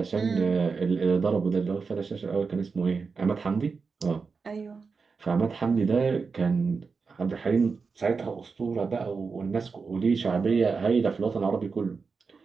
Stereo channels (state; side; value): quieter; left; 4.9 dB